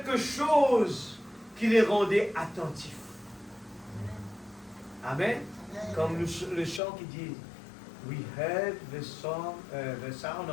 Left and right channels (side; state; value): right; drops out; at 6.8 s